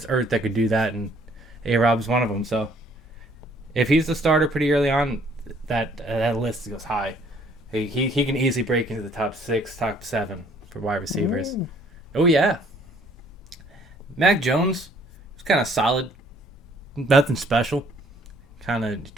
earth that could do that, and A-Rob's one of them. So if he's the starter pretty early on, that list goes high. He can easily break into the top 6, top 7 for wide receivers. Ooh. Oh, yeah. Mac Jones was kind of solid. Nothing special. Kind of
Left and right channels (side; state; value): both; normal; correlation 0.61